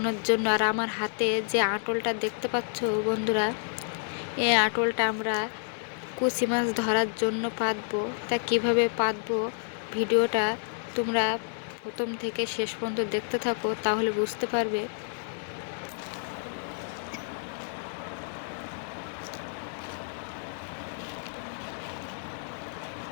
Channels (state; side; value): silent; right; 58 dB below the other